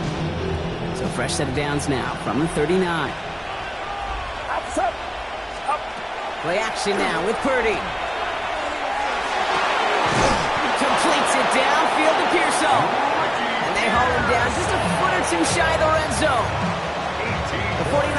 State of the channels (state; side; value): identical; both; correlation 1.00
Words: fresh set of downs now from the 39. Play action now with Purdy. Completes it downfield to Pearsall. And they haul him down just a foot or two shy of the red zone. The